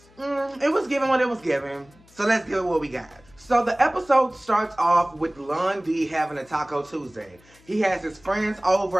it was given what it was given, so let's give it what we got. So the episode starts off with Lon D having a Taco Tuesday. He has his friends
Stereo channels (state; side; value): noise; left; hum, 28 dB below the sound